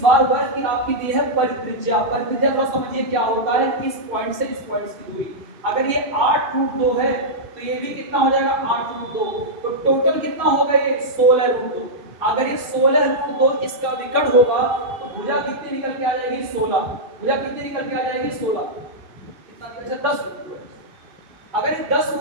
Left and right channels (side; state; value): left; late; 2.6 ms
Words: वर्ग की आपकी दी है परित्रिज्या। परित्रिज्या थोड़ा समझिए क्या होता है, इस पॉइंट से इस पॉइंट की दूरी। अगर ये 8√2 है तो ये भी कितना हो जाएगा 8√2, तो टोटल कितना होगा ये 16√2। अगर ये 16√2 इसका विकर्ण होगा तो भुजा कितनी निकल के आ जाएगी 16। भुजा कितनी निकल के आ जाएगी 16, कितना निकल जाएगा 10। अगर ये 10